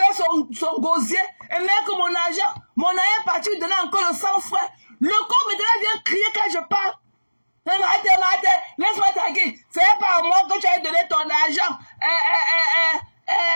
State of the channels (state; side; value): inverted; both; correlation -1.00